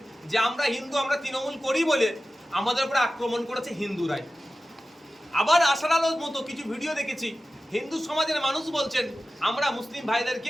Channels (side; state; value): both; normal; correlation 0.95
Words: যে আমরা হিন্দু, আমরা তৃণমূল করি বলে আমাদের উপরে আক্রমণ করেছে হিন্দুরাই। আবার আশার আলোর মতো কিছু ভিডিও দেখেছি, হিন্দু সমাজের মানুষ বলছেন আমরা মুসলিম